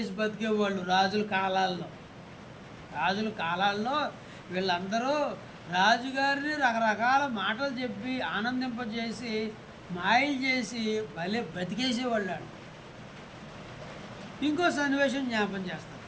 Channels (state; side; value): identical; both; correlation 1.00